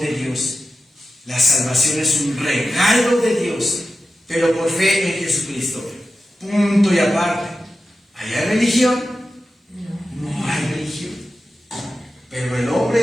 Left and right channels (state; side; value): normal; both; correlation 0.92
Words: Dios. La salvación es un regalo de Dios, pero por fe en Jesucristo. Punto y aparte. ¿Hay religión? No hay religión. Pero el